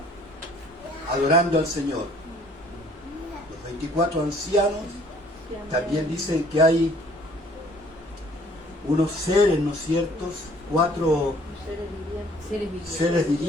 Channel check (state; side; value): normal; both; correlation 0.58